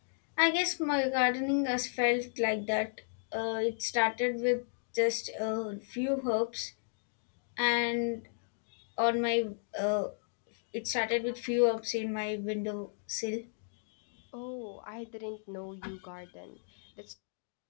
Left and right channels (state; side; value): silent; right; digital silence